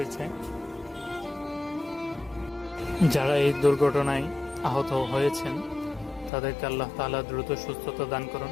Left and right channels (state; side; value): drops out; right; at 6.3 s